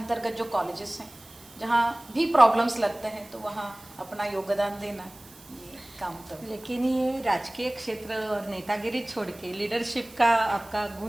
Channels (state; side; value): noise; right; hiss, 23 dB below the sound